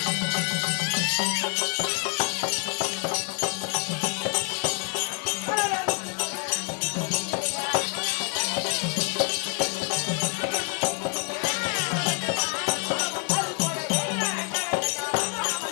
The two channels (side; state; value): right; quieter; 35.4 dB